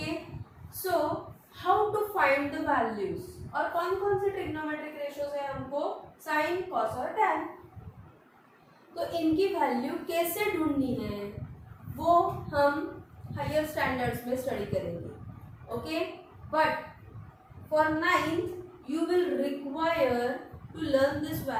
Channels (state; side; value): identical; both; correlation 1.00